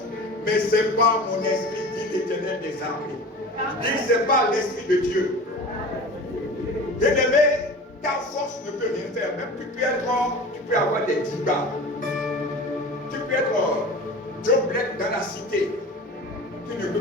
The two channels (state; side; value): normal; both; correlation 0.36